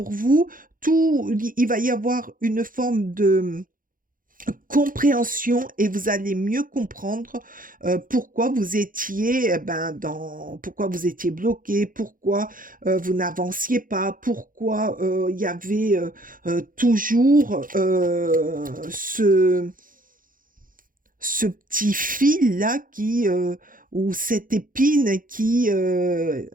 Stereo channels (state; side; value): late; left; 0.40 ms